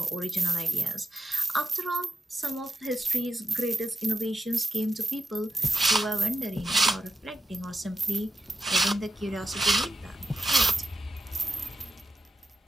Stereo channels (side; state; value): both; normal; correlation 0.88